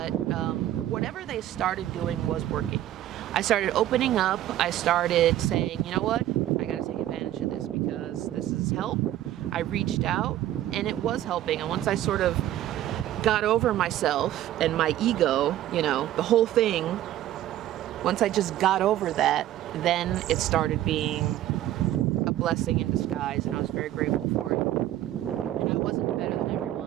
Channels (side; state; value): left; quieter; 13.1 dB